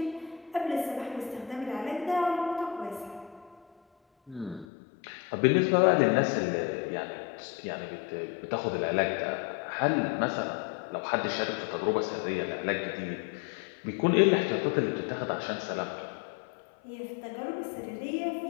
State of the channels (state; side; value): drops out; right; at 4.7 s